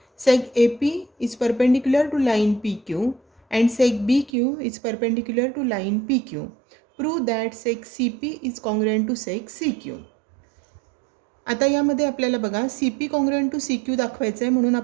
Seg AP is perpendicular to line PQ and seg BQ is perpendicular to line PQ. Prove that seg CP is congruent to seg CQ. आता यामध्ये आपल्याला बघा CP congruent to CQ दाखवायचं आहे म्हणून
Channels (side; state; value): left; drops out; at 4.3 s